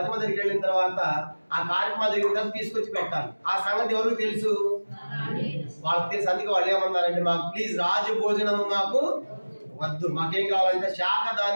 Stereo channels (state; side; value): inverted; both; correlation -1.00